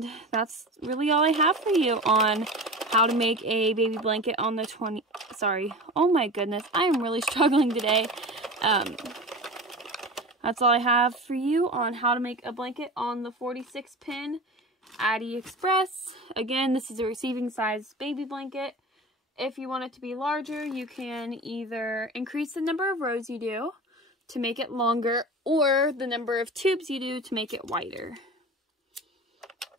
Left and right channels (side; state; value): both; normal; correlation 0.32